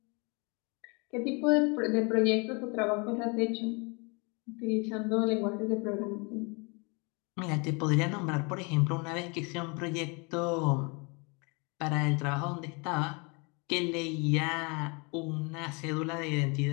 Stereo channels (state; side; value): quieter; right; 31.0 dB